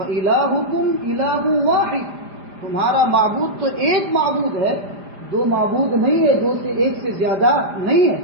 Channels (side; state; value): left; late; 5.0 ms